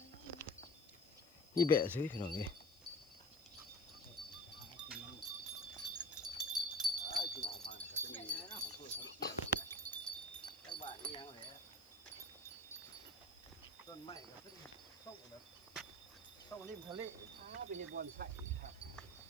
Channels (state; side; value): noise; left; hiss, 25 dB below the sound